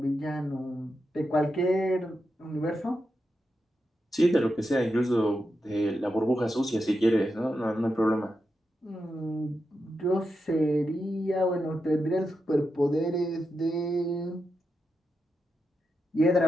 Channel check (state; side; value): normal; both; correlation 0.87